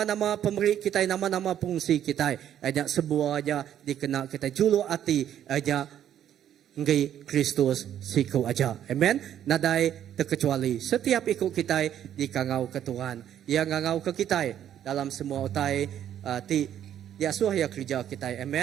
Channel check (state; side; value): quieter; left; 10.4 dB